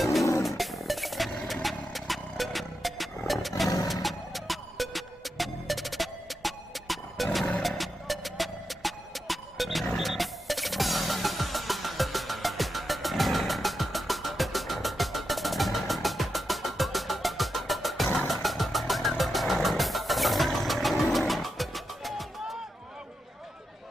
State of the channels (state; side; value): normal; both; correlation 0.87